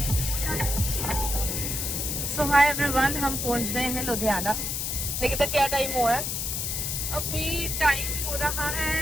So hi everyone, हम पहुंच गए हैं लुधियाना। देखिए तो क्या टाइम हुआ है? अभी टाइम हो रहा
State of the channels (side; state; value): left; noise; hiss, 1 dB below the sound